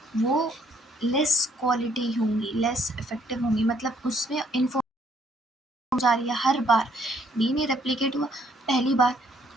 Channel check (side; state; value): both; normal; correlation 0.66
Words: वो लेस क्वालिटी होंगी, लेस इफेक्टिव होंगी, मतलब उसमें इन्फो जा रही है हर बार। डीएनए रेप्लिकेट हुआ पहली बार